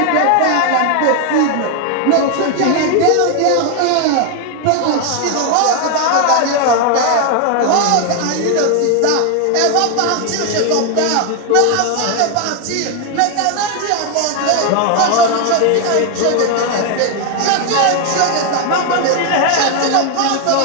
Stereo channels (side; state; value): both; different; correlation 0.01